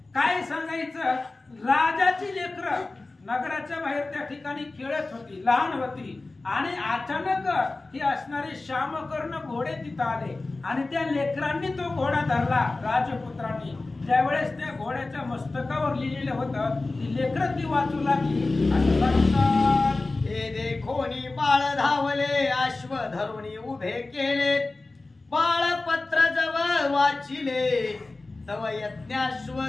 काय सांगायचं, राजाची लेकरं नगराच्या बाहेर त्या ठिकाणी खेळत होती, लहान होती आणि अचानक ही असणारे श्यामकर्ण घोडे तिथं आले आणि त्या लेकरांनी तो घोडा धरला राजपुत्रांनी। त्यावेळेस त्या घोड्याच्या मस्तकावर लिहिलेलं होतं, ती लेकरं ती वाचू लागली असं सांगतात। हे देखोनी बाळ धावले, अश्व धरुणी उभे केले, बाळपत्र जवळ वाचिले, तव यज्ञाश्व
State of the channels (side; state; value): right; quieter; 3.3 dB